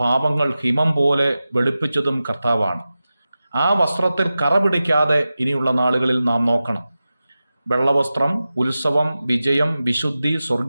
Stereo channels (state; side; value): inverted; both; correlation -0.94